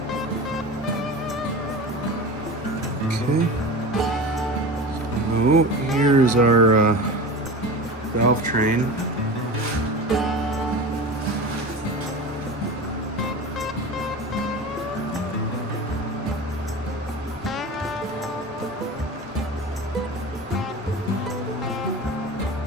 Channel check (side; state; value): both; normal; correlation 0.32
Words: Okay. So here's our valve train.